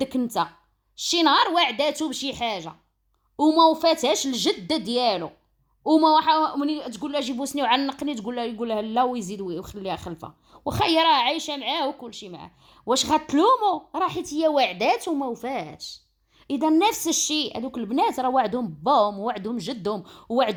انت شي نهار وعداتو بشي حاجه وما وفاتهاش الجده ديالو، وما مني تقول لها جيبو سني وعنقني يقول لها لا ويزيد ويخليها خلفه، واخا هي راه عايشه معاه وكل شيء معاه. واش غتلومو؟ راه حيت هي وعدات وما وفاتش. اذا نفس الشيء هذوك البنات راه وعدهم باهم ووعدهم جدهم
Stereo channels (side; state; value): both; identical; correlation 1.00